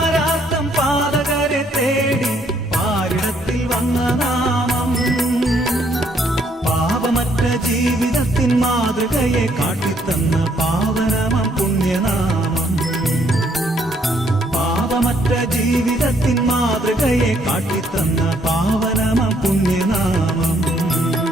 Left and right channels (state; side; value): normal; both; correlation 0.68